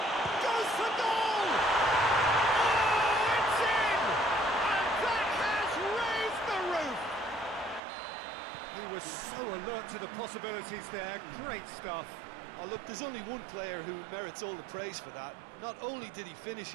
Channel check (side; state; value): left; drops out; at 7.8 s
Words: Goes for goal! Oh, it's in! And that has raised the roof! He was so alert to the possibilities there. Great stuff. Oh, look, there's only one player who merits all the praise for that. Not only did he